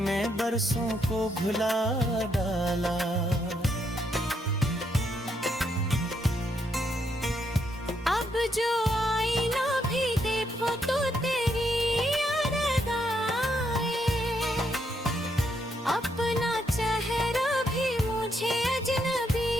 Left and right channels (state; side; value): normal; both; correlation 0.77